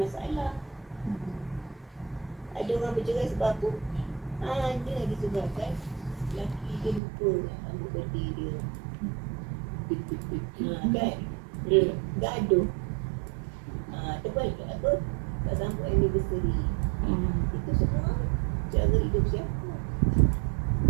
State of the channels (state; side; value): drops out; left; at 7.0 s